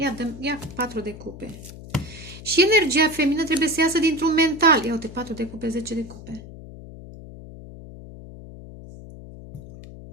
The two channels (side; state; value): left; noise; hum, 15 dB below the sound